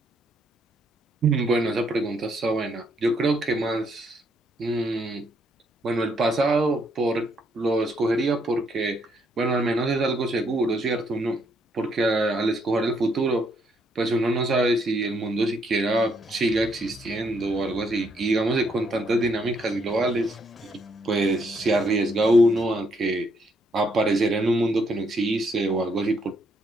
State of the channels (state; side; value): normal; both; correlation 0.72